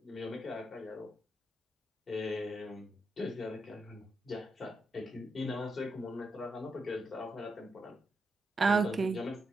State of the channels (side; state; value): both; normal; correlation 0.84